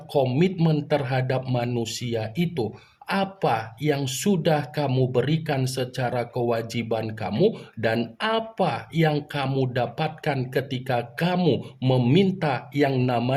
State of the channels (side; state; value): both; identical; correlation 1.00